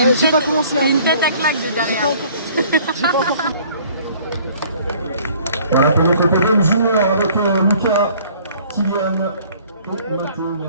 J'ai pas commencé à... Une tête à claque de derrière. J'ai pas encore... Voilà pour notre podium junior avec Lucas, Kylian et Mathieu.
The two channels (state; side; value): inverted; both; correlation -0.55